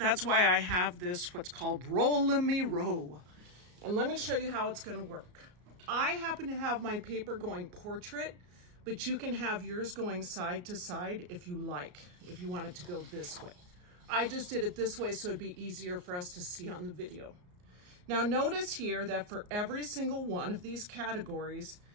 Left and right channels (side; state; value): left; late; 34 ms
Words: why I have this, what's called Roll-a-Me-Row. And let me show you how it's going to work. I happen to have my paper going portrait, but you can have yours going side to side if you like, if you want it to go this way. I just did it this way so it'd be easier for us to see on the video. Now notice here that for every single one of these categories,